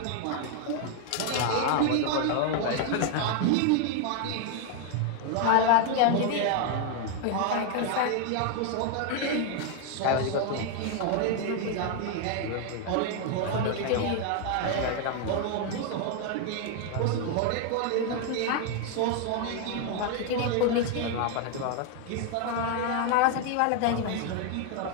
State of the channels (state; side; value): different; both; correlation 0.01